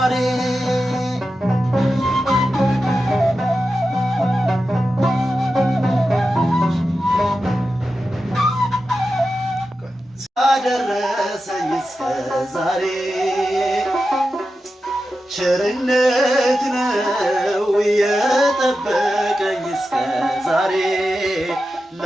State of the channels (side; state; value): both; normal; correlation 0.91